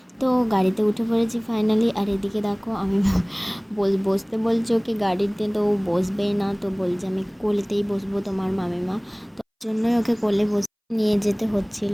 তো গাড়িতে উঠে পড়েছি ফাইনালি। আর এদিকে দেখো আমি বসতে বলছে ওকে গাড়িতে, তো ও বসবেই না, তো বলছে আমি কোলেতেই বসবো তোমার মামিমা, তো তার জন্যই ওকে কোলে বসে নিয়ে যেতে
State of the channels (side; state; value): both; identical; correlation 1.00